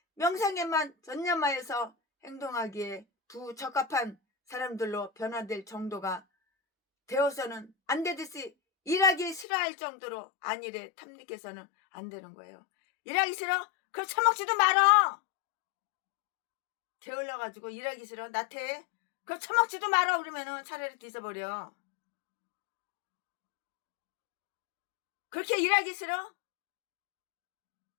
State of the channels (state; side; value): drops out; right; at 9.5 s